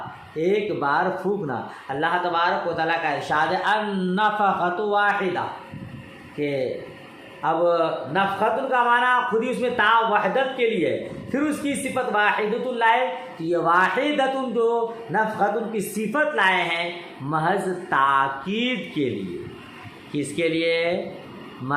ایک بار پھونکنا۔ اللہ تبارک و تعالیٰ کا ارشاد ہے النفخۃ واحدہ، کہ اب نفخۃ کا معنی خود ہی اس میں تا وحدت کے لیے، پھر اس کی صفت واحدۃ لائے، تو یہ واحدۃ جو نفخۃ کی صفت لائے ہیں محض تاکید کے لیے، کس کے لیے؟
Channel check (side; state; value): both; identical; correlation 1.00